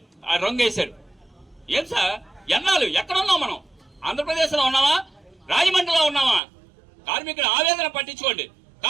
ఆ రంగు వేశారు. ఏం సార్, ఎన్నాళ్ళు ఎక్కడ ఉన్నాం మనం? ఆంధ్రప్రదేశ్ లో ఉన్నావా, రాజమండ్రిలో ఉన్నావా? కార్మికుల ఆవేదన పట్టించుకోండి,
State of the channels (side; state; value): left; drops out; at 6.4 s